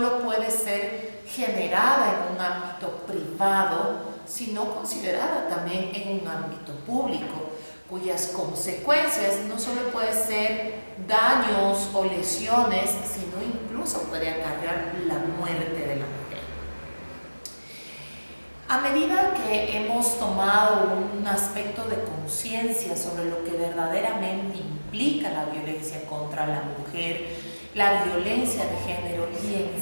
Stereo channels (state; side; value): inverted; both; correlation -1.00